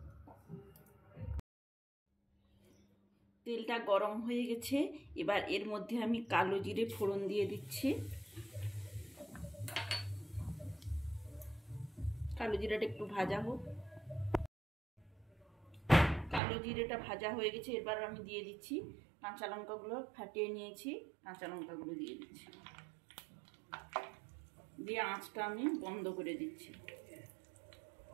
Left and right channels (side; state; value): left; drops out; at 16.4 s